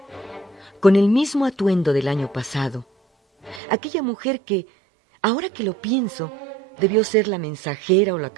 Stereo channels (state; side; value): drops out; left; at 3.6 s